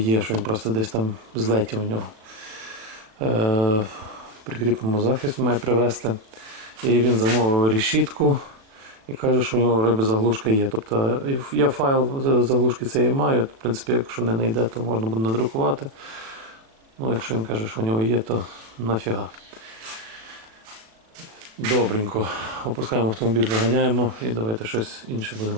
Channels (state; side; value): late; left; 37 ms